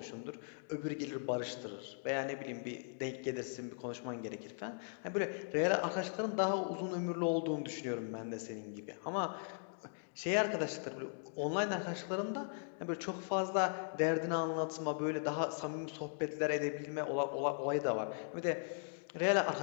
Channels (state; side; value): silent; right; digital silence